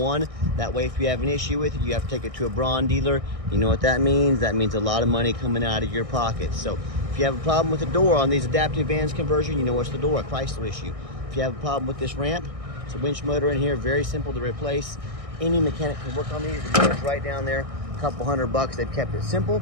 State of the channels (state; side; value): late; left; 1.6 ms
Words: That way, if you have an issue with it, you have to take it to a Braun dealer. You know what that means? That means a lot of money coming out of your pocket. So if you have a problem with the door on these adaptive vans conversion, you know it's the door, a Chrysler issue. If you have a problem with this ramp, it's a winch motor in here, very simple to replace. Any mechanic can work on these. The motor's right down there, a couple $100. They've kept it simple.